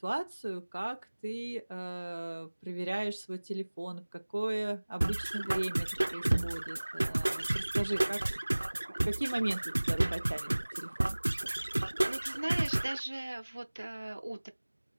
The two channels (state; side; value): inverted; both; correlation -1.00